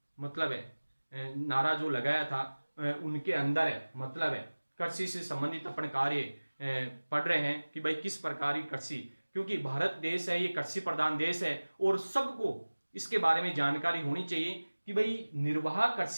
मतलब है नारा जो लगाया था उनके अंदर है, मतलब है कृषि से संबंधित अपन कार्य पढ़ रहे हैं कि भाई किस प्रकार की कृषि, क्योंकि भारत देश है ये कृषि प्रधान देश है और सबको इसके बारे में जानकारी होनी चाहिए कि भाई निर्वाह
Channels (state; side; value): inverted; both; correlation -1.00